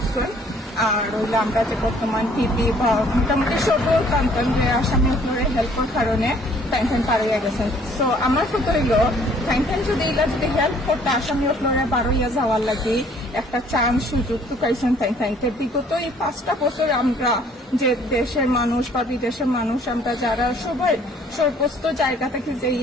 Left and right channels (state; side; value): normal; both; correlation 0.59